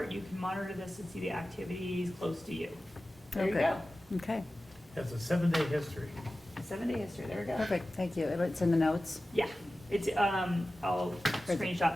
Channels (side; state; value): both; normal; correlation 0.95